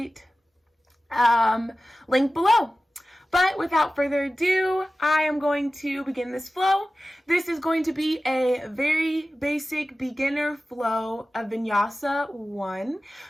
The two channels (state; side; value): normal; both; correlation 0.96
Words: link below. But without further ado, I am going to begin this flow. This is going to be a very basic beginner flow of Vinyasa 1